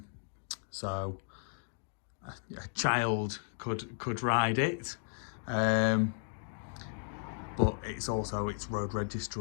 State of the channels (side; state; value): right; silent; 55 dB below the other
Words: a child could ride it, but it's road